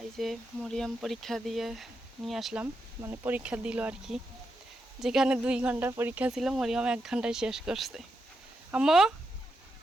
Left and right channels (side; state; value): both; normal; correlation 0.85